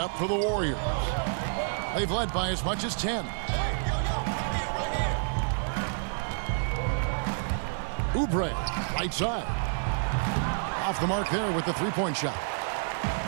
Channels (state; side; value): silent; left; 59 dB below the other